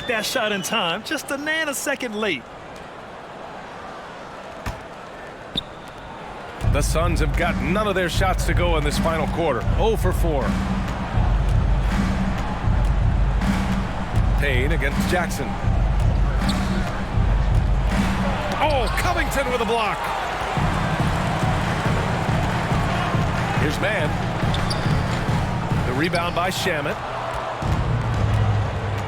that shot in time, just a nanosecond late. The Suns have got none of their shots to go in this final quarter. 0 for 4. Payne against Jackson. Oh, Covington with a block. Here's Mann. The rebound by Shamet.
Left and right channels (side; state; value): both; identical; correlation 1.00